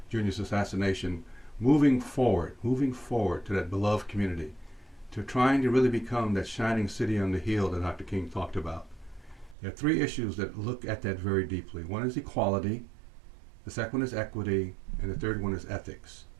Jr.'s assassination, moving forward to that beloved community, to trying to really become that shining city on the hill that Dr. King talked about. There are three issues that look at that very deeply. One is equality, the second one is equity, and the third one is ethics.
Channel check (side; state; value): left; drops out; at 9.6 s